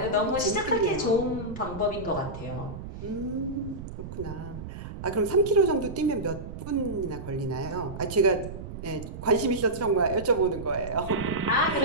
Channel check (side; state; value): right; noise; rumble, 10 dB below the sound